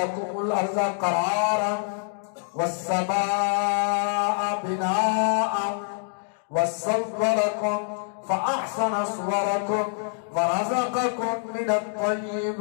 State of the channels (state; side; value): silent; right; digital silence